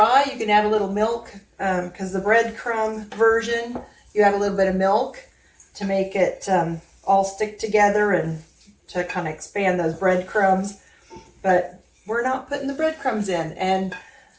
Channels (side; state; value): both; identical; correlation 1.00